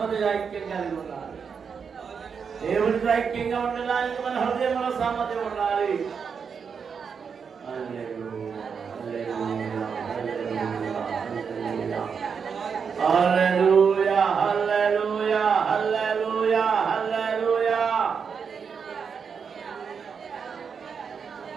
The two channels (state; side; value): quieter; left; 6.3 dB